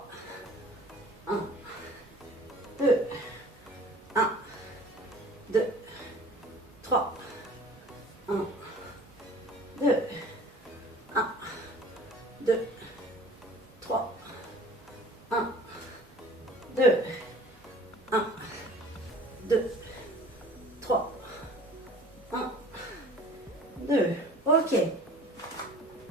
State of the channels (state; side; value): normal; both; correlation 0.47